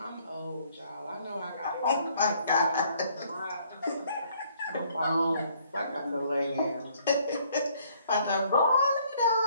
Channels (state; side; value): inverted; both; correlation -0.63